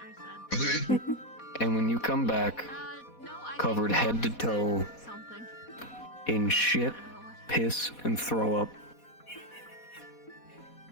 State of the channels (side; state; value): right; late; 4.1 ms